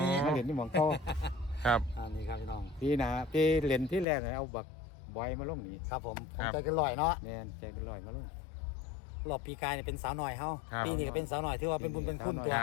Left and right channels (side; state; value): right; drops out; at 4.0 s